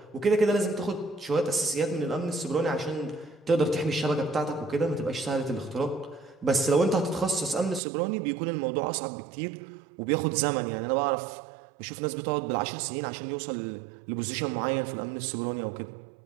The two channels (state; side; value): drops out; left; at 7.8 s